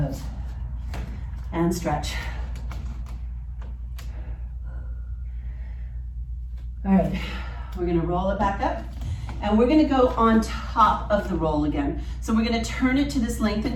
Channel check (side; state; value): both; identical; correlation 1.00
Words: And stretch. All right, we're gonna roll it back up, and we're gonna go on top of the roll again. So we're gonna turn it to this